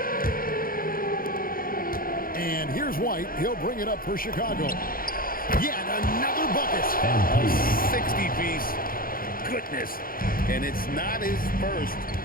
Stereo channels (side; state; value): right; late; 0.42 ms